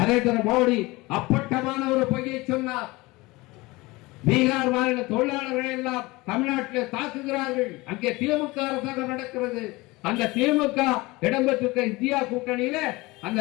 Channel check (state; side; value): quieter; right; 22.0 dB